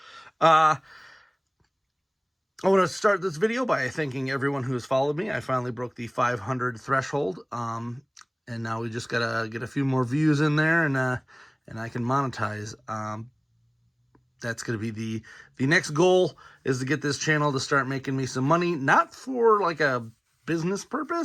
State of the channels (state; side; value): identical; both; correlation 1.00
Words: I want to start this video by thanking everyone who has followed me. I finally broke the 500 threshold, and now we just gotta get a few more views in there, and I can monetize. That's gonna be the next goal, is to get this channel to start making me some money, not for like a business